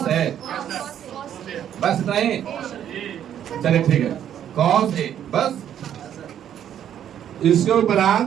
है, बस नहीं, चलिए ठीक है, कॉस ए बस। इसके उपरांत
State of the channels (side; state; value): left; quieter; 10.1 dB